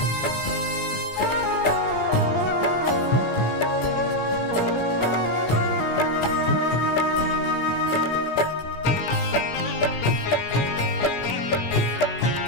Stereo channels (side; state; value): right; late; 17 ms